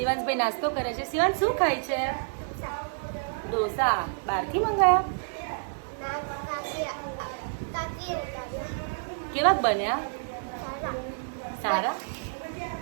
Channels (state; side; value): silent; left; 59 dB below the other